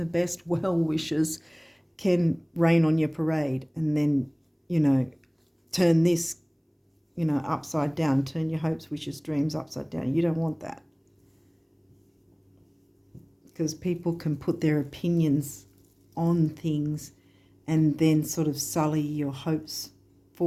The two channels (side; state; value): both; identical; correlation 1.00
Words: best well-wishers can rain on your parade and then, turn this, upside down, turn your hopes, wishes, dreams upside down. You don't want that, because people can put their opinions on things and then sort of sully your hopes